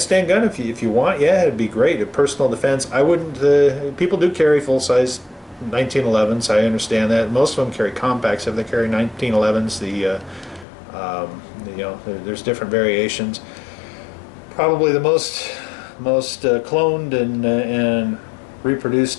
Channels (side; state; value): right; drops out; at 10.7 s